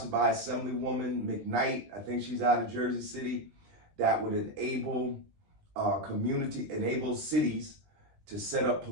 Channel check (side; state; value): left; late; 19 ms